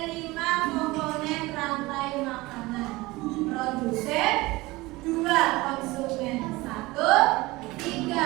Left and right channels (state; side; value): quieter; left; 21.0 dB